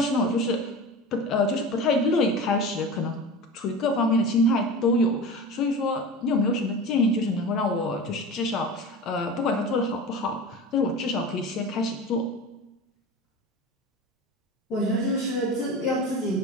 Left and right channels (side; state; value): both; normal; correlation 0.31